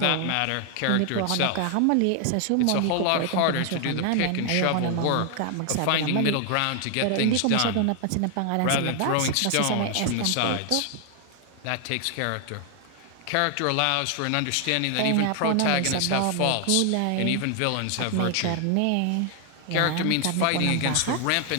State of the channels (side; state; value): both; different; correlation 0.00